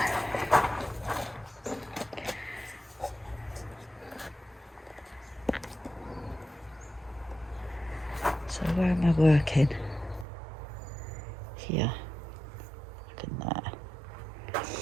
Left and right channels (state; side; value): drops out; left; at 10.2 s